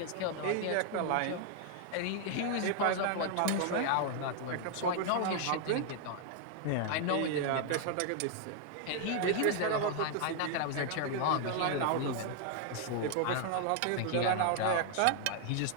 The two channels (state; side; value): different; both; correlation 0.00